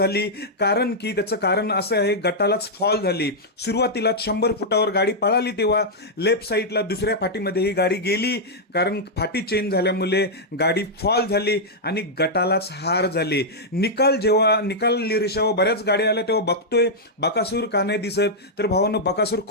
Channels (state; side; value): normal; both; correlation -0.06